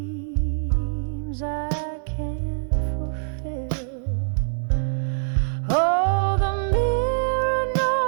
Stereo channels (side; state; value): left; silent; 62 dB below the other